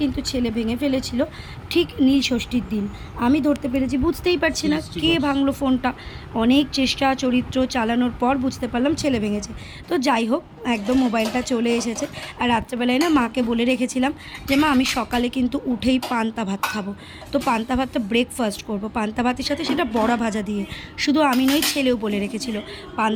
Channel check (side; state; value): both; identical; correlation 1.00